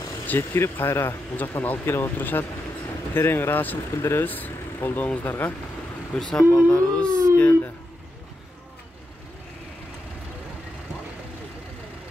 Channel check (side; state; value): both; normal; correlation 0.86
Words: жеткирип кайра бул жактан алып келип отурушат. Терең ыраазычылык билдиребиз колдооңуздарга. Буйруса балдарыбыз келди.